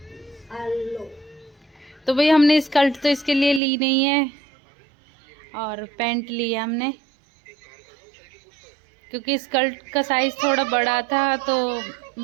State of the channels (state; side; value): drops out; left; at 3.6 s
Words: तो भाई हमने स्कर्ट तो इसके लिए ली नहीं है और पैंट ली है हमने, क्योंकि स्कर्ट का साइज थोड़ा बड़ा था तो